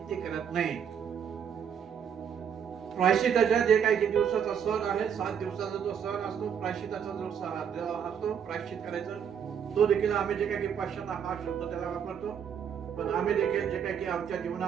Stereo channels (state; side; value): quieter; left; 7.9 dB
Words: ते करत नाही. प्रायश्चिताच्या जे काही किती दिवसाचा सण आहे, 7 दिवसाचा जो सण असतो, प्रायश्चिताचा जो असतो, प्रायश्चित करायचं, तो देखील आम्ही जे काही पश्चाताप हा शब्द त्याला वापरतो. पण आम्ही देखील जे काही की आमच्या